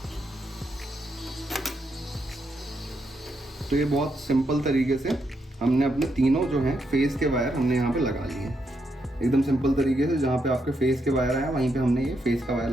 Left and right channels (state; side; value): normal; both; correlation 0.80